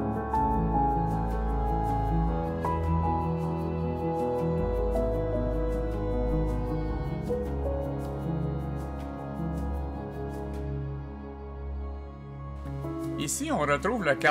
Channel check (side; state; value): both; identical; correlation 1.00